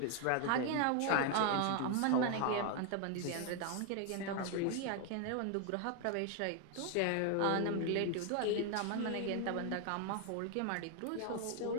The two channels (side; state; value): both; different; correlation 0.01